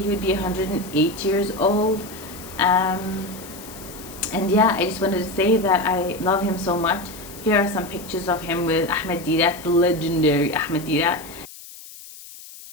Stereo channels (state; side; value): noise; left; hiss, 17 dB below the sound